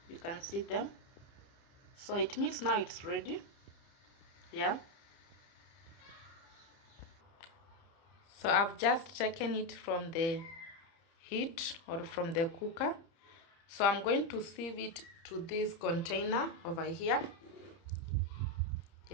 You can see them. So it means now it's ready. So I've just taken it from the heat or from the cooker. So I'm going to sieve it to this container over here.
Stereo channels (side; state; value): right; late; 30 ms